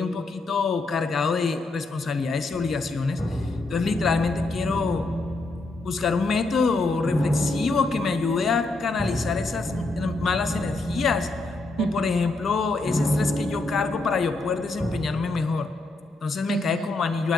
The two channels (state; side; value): quieter; right; 3.2 dB